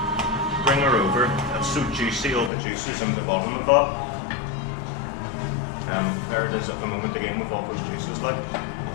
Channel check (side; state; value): right; drops out; at 2.5 s